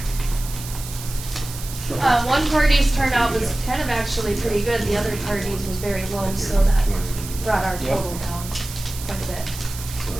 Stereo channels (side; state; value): right; noise; hiss, 12 dB below the sound